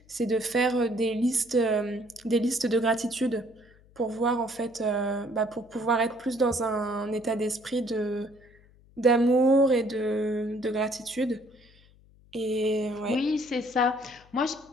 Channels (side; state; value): left; noise; hum, 28 dB below the sound